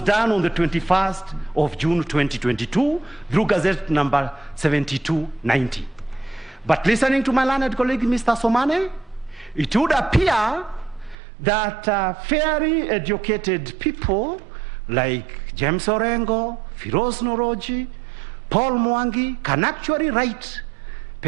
done on the 21st of June 2022 through Gazette number 7290. But listening to my learned colleague, Mr. Somane, it would appear that fairly educated people like James Orengo, Firoz Noroji, Paul Mwangi can actually write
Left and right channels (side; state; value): left; drops out; at 11.2 s